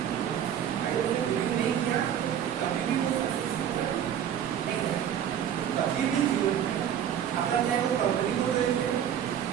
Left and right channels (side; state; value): left; quieter; 9.6 dB